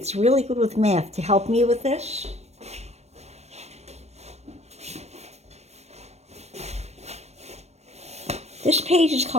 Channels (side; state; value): left; late; 0.31 ms